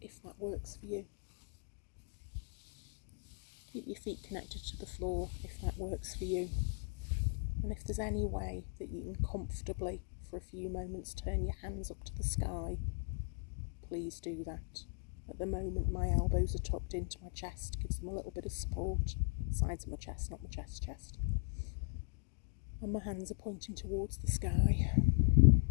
if that works for you. Keep your feet connected to the floor if that works for you. And if there's any way that you can comfortably, for a few moments, turn your hands up to the sky, please do that. At the moment, my elbows are tucked into my chest, gives them a little bit of support. Sides of my chest, not my chest. And my hands are pointing towards the sky.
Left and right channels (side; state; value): right; quieter; 39.6 dB